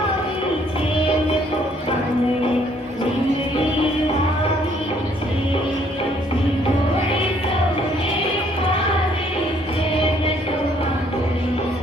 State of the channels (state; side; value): normal; both; correlation 0.64